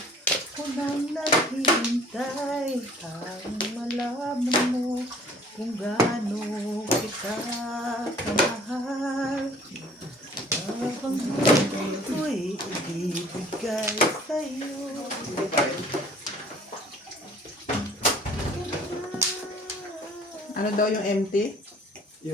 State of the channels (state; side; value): normal; both; correlation 0.52